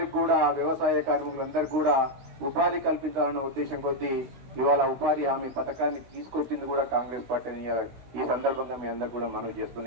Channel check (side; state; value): left; late; 16 ms